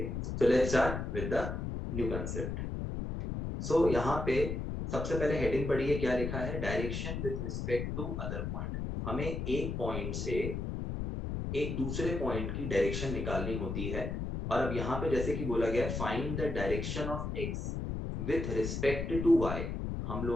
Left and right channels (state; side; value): noise; left; rumble, 3 dB below the sound